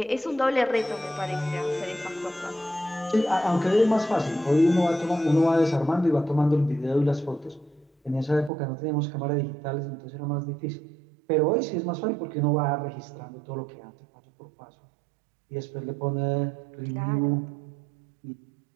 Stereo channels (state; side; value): drops out; left; at 8.5 s